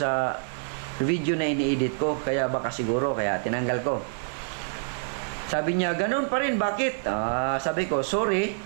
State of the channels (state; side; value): silent; left; digital silence